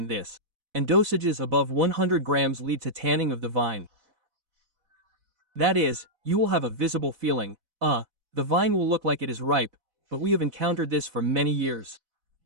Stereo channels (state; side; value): late; left; 4.0 ms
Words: this, and dosages above 100 grams lead to tanning of the vine. That is, you will have a visible feeling, the vine will look like it is ripe, but we have encountered this for many years.